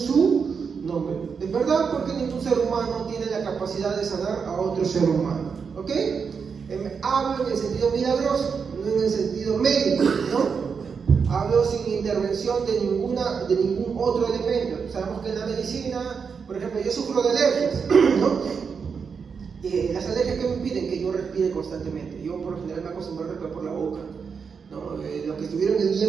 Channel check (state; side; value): quieter; left; 5.9 dB